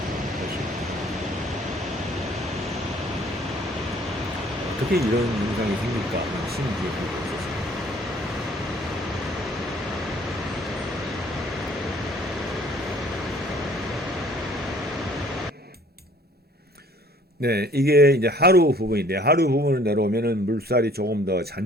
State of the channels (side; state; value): both; normal; correlation 0.56